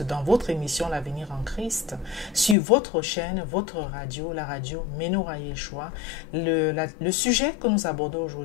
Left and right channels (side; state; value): right; drops out; at 2.6 s